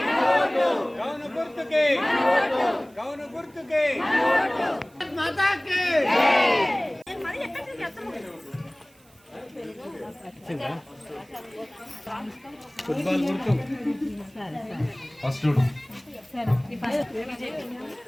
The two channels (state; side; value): noise; right; hiss, 30 dB below the sound